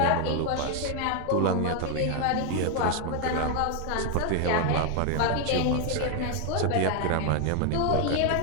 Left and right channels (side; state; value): both; different; correlation 0.00